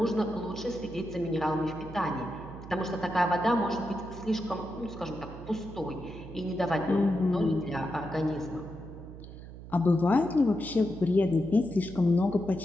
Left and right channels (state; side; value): noise; right; hum, 14 dB below the sound